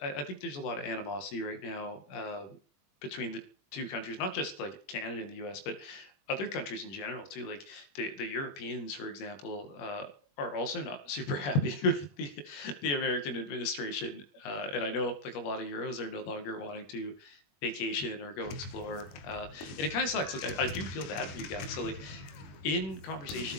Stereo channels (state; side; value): late; right; 21 ms